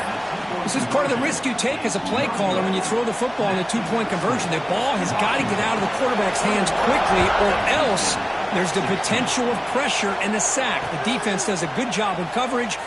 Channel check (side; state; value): both; identical; correlation 1.00